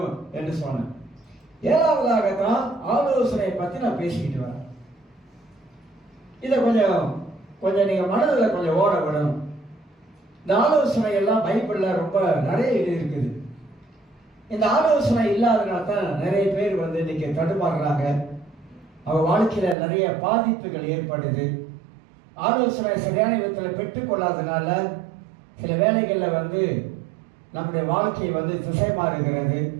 என்று சொன்னேன். ஏழாவதாகத்தான் ஆலோசனை பத்தி நான் பேசிக்கிட்டு வரேன். இதை கொஞ்சம் நீங்க மனதில் கொஞ்சம் ஓட விடணும். இந்த ஆலோசனை எல்லாம் பைபிள்ல ரொம்ப நிறைய இருக்குது. இந்த ஆலோசனை இல்லாதனால தான் நிறைய பேர் இன்னைக்கு தடுமாறுறாங்க. அவங்க வாழ்க்கையில நிறைய பாதிப்புகள் ஏற்படுது. ஆலோசனை சரியான விதத்தில் பெற்றுக்கொள்ளாதனால சில வேலைகளில் நம்முடைய வாழ்க்கையை திசை மாறுகிறது.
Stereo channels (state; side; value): drops out; left; at 19.8 s